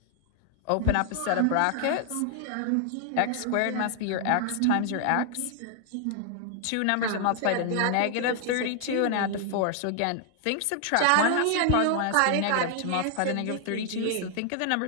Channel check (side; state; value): both; different; correlation 0.00